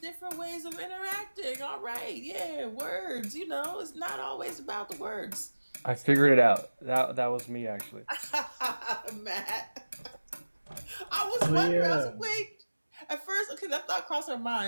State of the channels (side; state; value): both; inverted; correlation -1.00